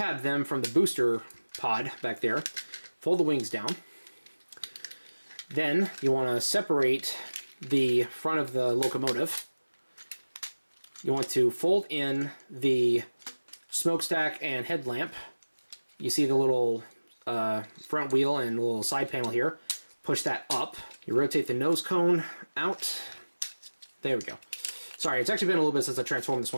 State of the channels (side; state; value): both; inverted; correlation -1.00